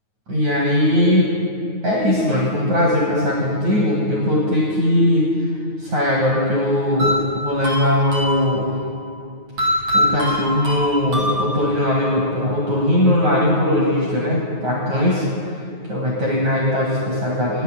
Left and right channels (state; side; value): late; left; 9.4 ms